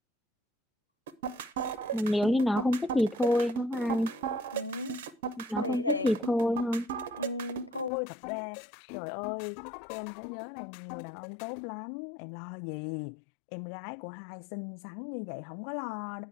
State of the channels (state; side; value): drops out; right; at 7.9 s